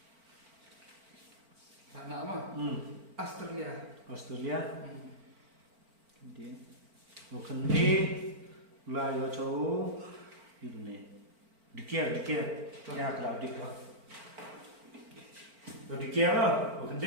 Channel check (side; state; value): left; late; 4.4 ms